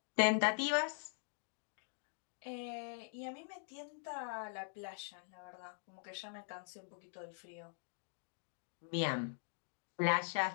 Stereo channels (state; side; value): silent; right; digital silence